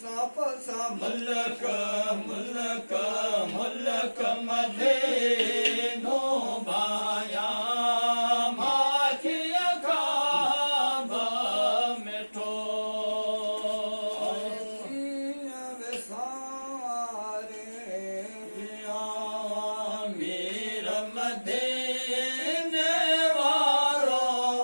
मुल्क मुल्क मदीनो बाया माखिया खाब मिठो मीर मदीने वारो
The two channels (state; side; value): inverted; both; correlation -1.00